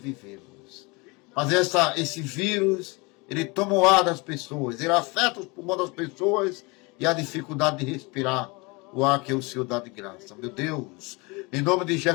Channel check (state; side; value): quieter; right; 26.9 dB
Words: Mas esse vírus, ele toma o ar das pessoas, ele afeta os pulmões das pessoas e a dificuldade de respirar o ar que o Senhor dá de graça. Meu Deus, em nome de